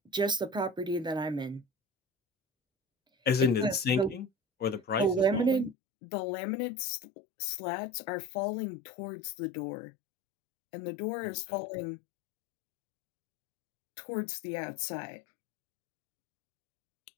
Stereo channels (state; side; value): drops out; right; at 5.8 s